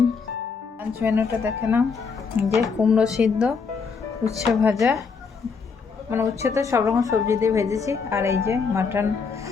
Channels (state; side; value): quieter; right; 5.3 dB